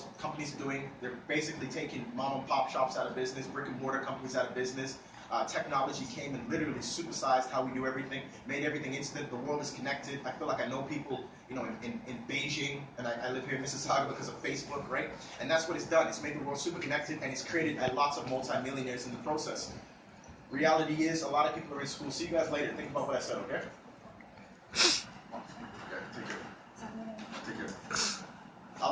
companies are doing, they're basically taking mom and pop shops out of business, brick and mortar companies out of business. Technology came and literally supersized how we do everything, made everything instant. The world is connected. I feel like I know people, in Beijing, and I live here in Mississauga because of Facebook, right? And that's what it's done. It's made the world super connected, and it's created lots of multimillionaires in the process. Reality is, a lot of people are in school. See you guys later. Think about what I said, okay? Okay, take care. Take care. A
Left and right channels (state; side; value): identical; both; correlation 1.00